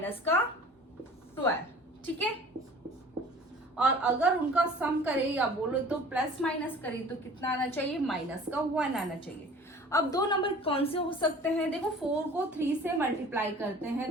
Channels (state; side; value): normal; both; correlation 0.46